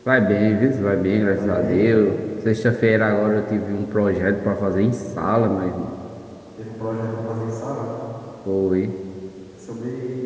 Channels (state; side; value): identical; both; correlation 1.00